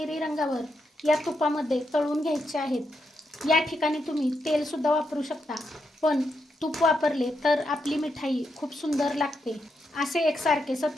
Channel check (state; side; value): normal; both; correlation 0.82